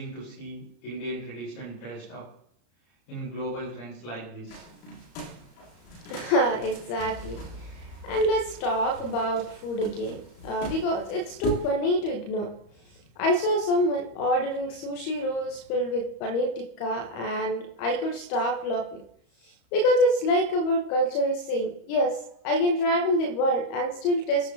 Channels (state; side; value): late; right; 34 ms